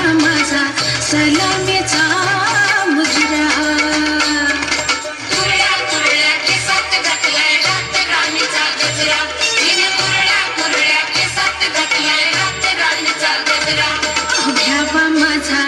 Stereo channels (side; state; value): both; identical; correlation 1.00